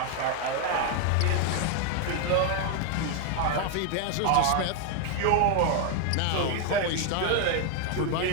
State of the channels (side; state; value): both; different; correlation 0.00